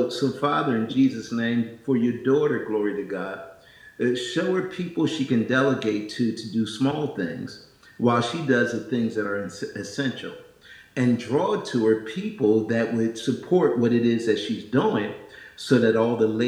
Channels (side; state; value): both; identical; correlation 1.00